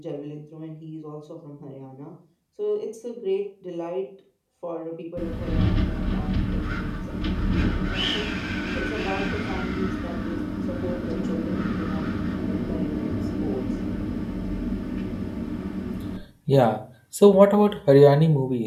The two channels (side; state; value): both; identical; correlation 1.00